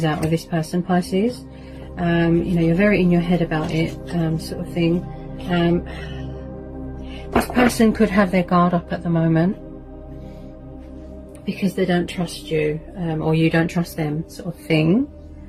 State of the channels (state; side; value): identical; both; correlation 1.00